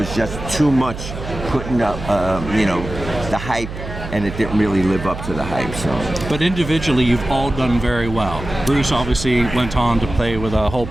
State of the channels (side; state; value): right; noise; hum, 9 dB below the sound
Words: just too much putting up the hype, and it didn't really live up to the hype. So, but individually, you've all done very well. Bruce obviously went on to play with a whole